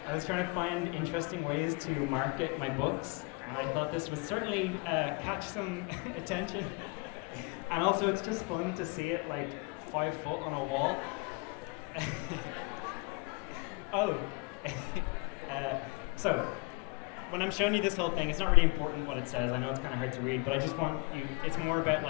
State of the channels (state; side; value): quieter; right; 28.8 dB